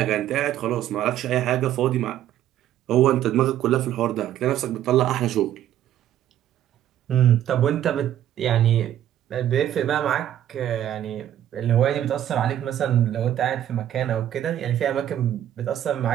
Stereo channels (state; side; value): quieter; left; 11.5 dB